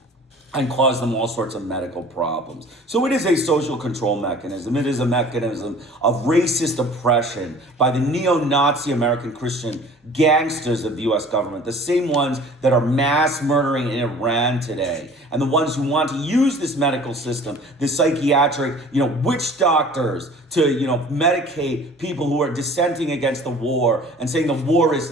and cause them all sorts of medical problems. So it is a social control mechanism. It is a mechanism of racist oppression by the neo-Nazi American Christian gangsters of the U.S. government, the same ones that are mass murdering in Iran today, and the ones who want to use this medical system, this psychiatric, witch doctors, to, medicate people who are dissenting against the war and saying the war is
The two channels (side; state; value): both; normal; correlation 0.47